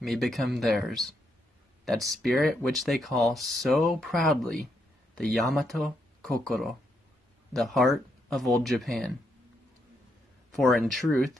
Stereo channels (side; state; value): both; normal; correlation 0.78